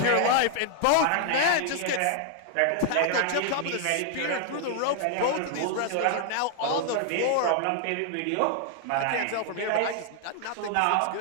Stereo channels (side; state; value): both; different; correlation 0.00